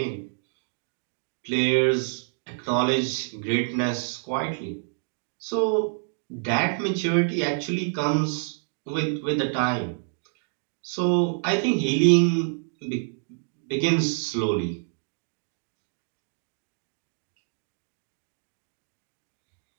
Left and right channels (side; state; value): left; silent; digital silence